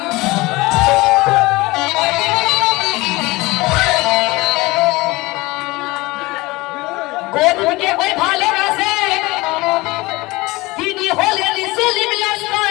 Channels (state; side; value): quieter; right; 21.7 dB